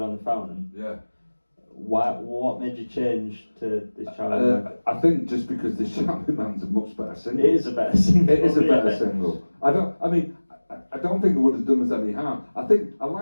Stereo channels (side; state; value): both; inverted; correlation -1.00